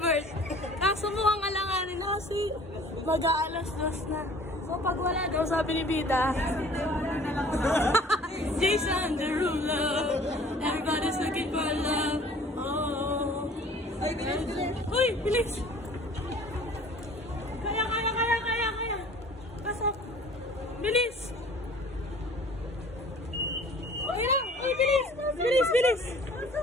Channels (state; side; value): normal; both; correlation 0.50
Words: Kaso mukhang alanganin na kasi mag-aalas-dos na. So pag wala daw, sabi ni Bida, Jason Derulo, everybody's looking for love. Oh. Ay, bilis! Uy, bilis! Kaya! Pasok! Bilis! Uy, bilis!